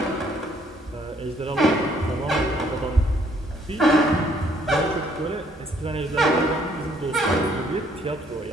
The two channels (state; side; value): normal; both; correlation 0.65